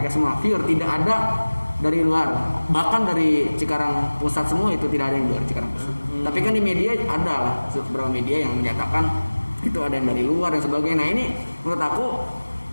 semua pure, tidak ada dari luar. Bahkan dari Cikarang Pusat semua itu tidak ada yang dari Cikarang Pusat. Tapi kan di media ada lah beberapa media yang menyatakan itu ada yang dari luar dan sebagainya. Nah ini menurut aku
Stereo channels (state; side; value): inverted; both; correlation -1.00